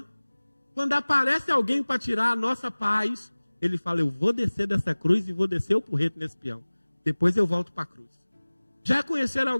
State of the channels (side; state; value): both; inverted; correlation -1.00